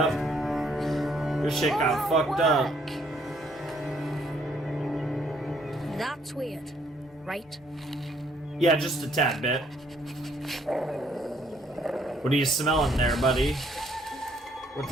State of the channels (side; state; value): both; normal; correlation 0.67